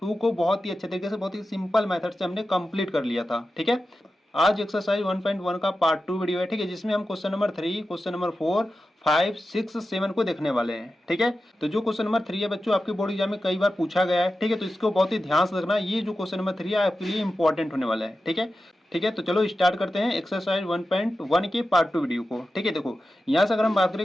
को बहुत ही अच्छे तरीके से बहुत ही सिंपल मेथड से हमने कंप्लीट कर लिया था। ठीक है, आज एक्सरसाइज 1.1 का पार्ट 2 वीडियो है। ठीक है, जिसमें हम क्वेश्चन नंबर 3, क्वेश्चन नंबर 4, 5, 6, 7 को देखने वाले हैं। ठीक है, तो जो क्वेश्चन नंबर 3 है बच्चों आपके बोर्ड एग्जाम में कई बार पूछा गया है। ठीक है, तो इसको बहुत ही ध्यान से रखना, ये जो क्वेश्चन नंबर 3 है आपके लिए इंपॉर्टेंट होने वाला है। ठीक है, तो चलो स्टार्ट करते हैं एक्सरसाइज 1.1 के पार्ट 2 वीडियो को। ठीक है, देखो यहाँ से अगर हम बात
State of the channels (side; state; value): both; normal; correlation 0.92